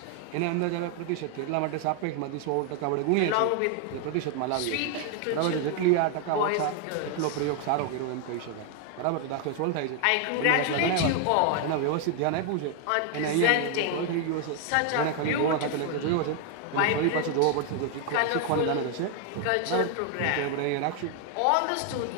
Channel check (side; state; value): both; different; correlation 0.00